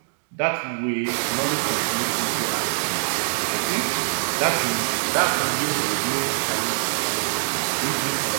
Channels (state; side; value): silent; left; digital silence